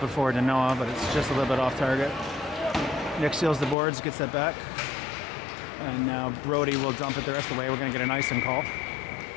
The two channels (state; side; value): drops out; right; at 3.8 s